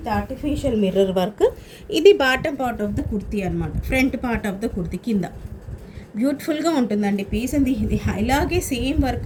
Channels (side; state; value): both; identical; correlation 1.00